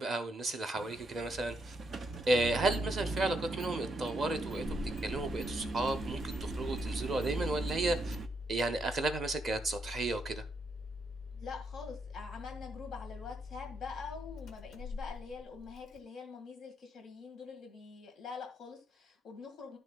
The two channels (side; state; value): both; normal; correlation 0.78